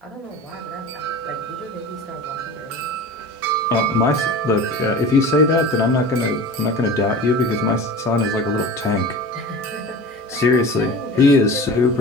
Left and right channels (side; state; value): both; normal; correlation 0.35